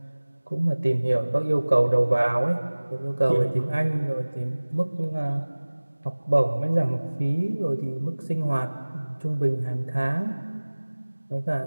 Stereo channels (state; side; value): inverted; both; correlation -1.00